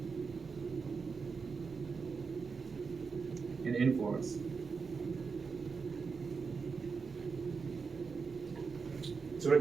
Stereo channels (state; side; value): quieter; left; 5.1 dB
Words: and influence. So when